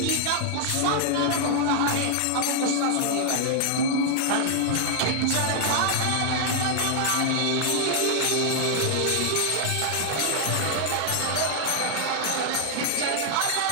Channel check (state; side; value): different; both; correlation 0.00